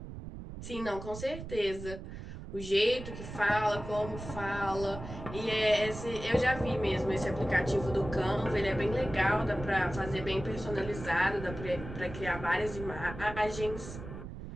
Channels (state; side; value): noise; right; rumble, 10 dB below the sound